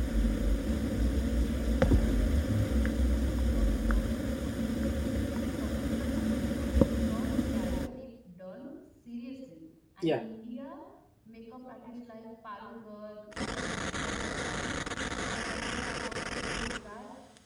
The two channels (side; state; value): both; identical; correlation 1.00